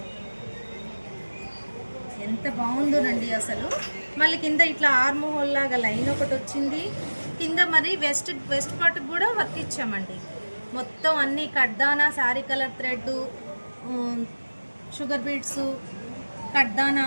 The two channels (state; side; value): inverted; both; correlation -1.00